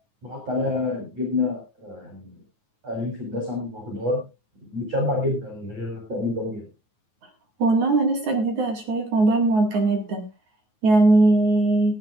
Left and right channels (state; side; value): late; left; 9.4 ms